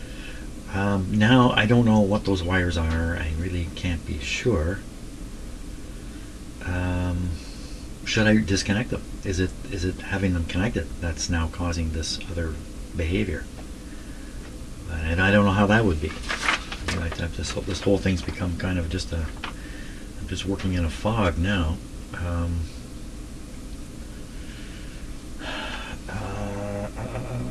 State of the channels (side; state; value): both; identical; correlation 1.00